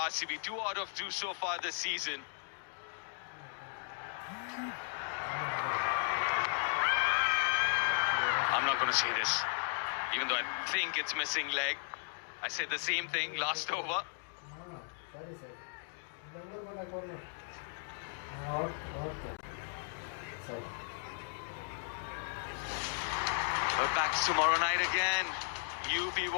2 out of 2 so far this season. I'm not going to say this, even though I think it's missing leg. I said the same thing last over. We're back tomorrow night again. UP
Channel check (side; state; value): right; silent; digital silence